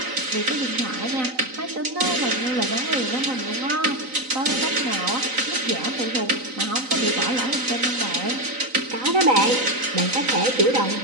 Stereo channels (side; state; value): left; late; 3.9 ms